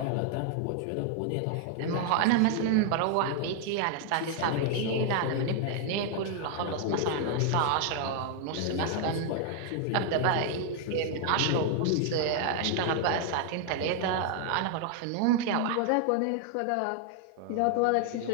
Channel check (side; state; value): both; different; correlation 0.00